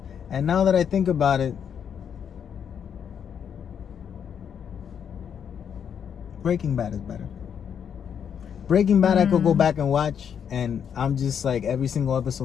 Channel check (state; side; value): quieter; right; 8.0 dB